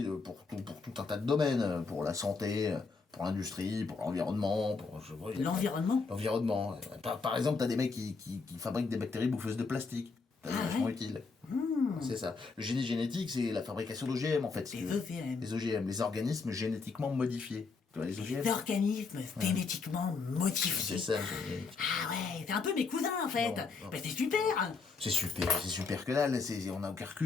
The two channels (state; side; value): quieter; right; 4.5 dB